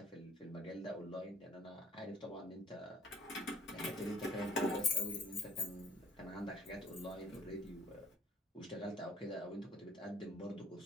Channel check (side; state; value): both; normal; correlation 0.55